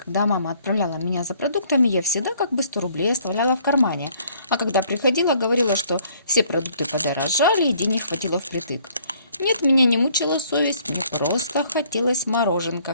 мама отправляла меня за продуктами, я всегда как бы 100 рублей оставляла в кармане. А когда приходила, говорила, что все продукты подорожали и денег хватило впритык. Нет, меня не мучила совесть, мне просто хотелось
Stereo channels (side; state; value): both; inverted; correlation -0.61